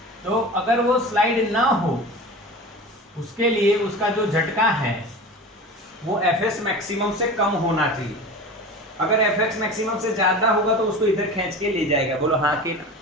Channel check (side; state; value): both; normal; correlation 0.33